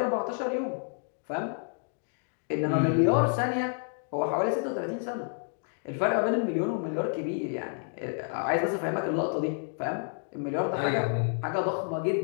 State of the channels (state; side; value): silent; right; digital silence